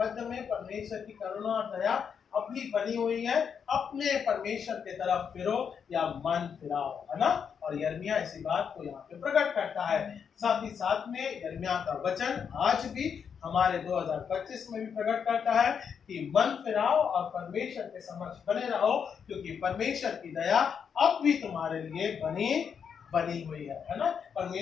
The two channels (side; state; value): right; quieter; 7.0 dB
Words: मध्य में परमेश्वर की करुणा और दया अब भी बनी हुई है, अपने परमेश्वर की तरफ फिरो या मन फिराओ, है ना। और यिर्मयाह इसी बात को यहाँ पे प्रकट करता है। साथ ही साथ में यिर्मयाह का वचन आज भी हमारे 2025 में भी प्रकट करता है कि मन फिराओ और परमेश्वर के समक्ष बने रहो, क्योंकि परमेश्वर की दया अब भी तुम्हारे लिए बनी हुई है ना।